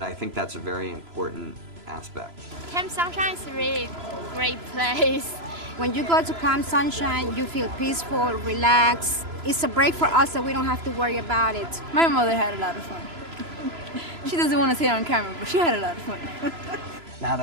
think that's a very important aspect. Camp Sunshine is a really great place. When you go to Camp Sunshine, you feel peaceful, relaxed. It's a break for us, so we don't have to worry about it. My mother had a lot of fun. She doesn't want to say it on camera, but she had a lot of fun. Now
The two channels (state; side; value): late; left; 3.0 ms